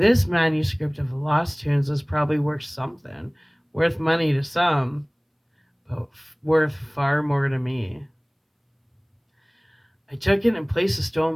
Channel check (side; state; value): both; identical; correlation 1.00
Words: manuscript of lost tunes was probably worth something, worth money to some, but worth far more to me. I took it and placed the